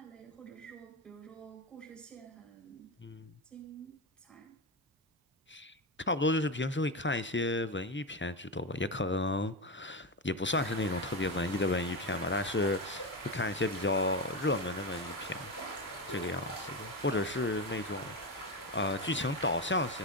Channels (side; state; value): both; normal; correlation 0.15